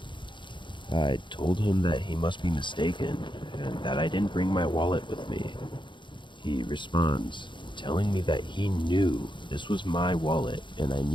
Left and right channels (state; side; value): late; right; 0.23 ms